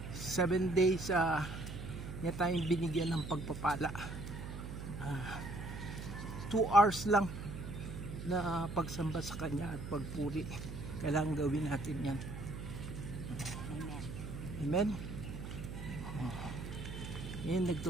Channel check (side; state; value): right; noise; hum, 8 dB below the sound